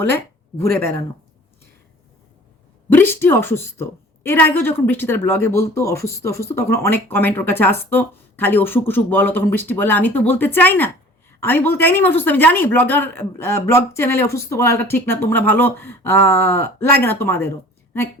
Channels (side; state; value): both; normal; correlation 0.47